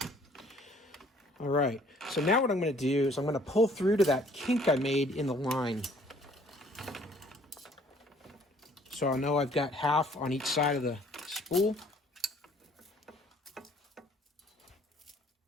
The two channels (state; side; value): normal; both; correlation 0.58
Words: All right, so now what I'm going to do is I'm going to pull through to that kink I made in the line. So I know I've got half on each side of the spool.